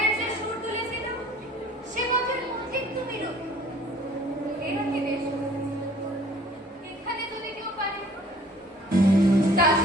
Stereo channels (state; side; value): normal; both; correlation 0.53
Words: যে সুর তুলেছিল সে পথের ঠিক তুমি রবি। এরা কি বেশ, এখানে যদি কেউ পারে তা